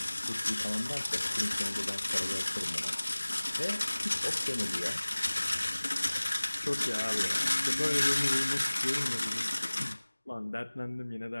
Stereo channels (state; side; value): inverted; both; correlation -1.00